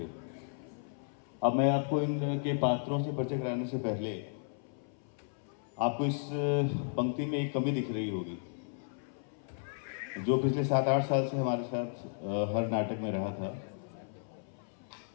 अब मैं आपको इनके पात्रों से परिचय कराने से पहले आपको इस पंक्ति में एक कमी दिख रही होगी जो पिछले 7-8 साल से हमारे साथ हर नाटक में रहा था।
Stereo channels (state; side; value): silent; right; 55 dB below the other